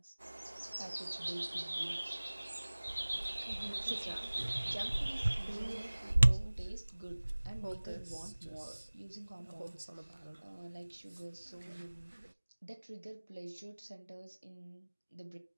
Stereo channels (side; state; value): both; inverted; correlation -1.00